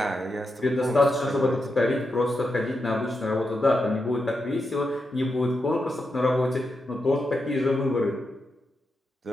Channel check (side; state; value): both; normal; correlation 0.86